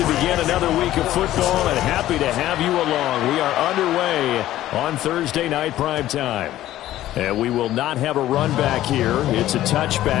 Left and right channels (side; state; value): right; quieter; 14.0 dB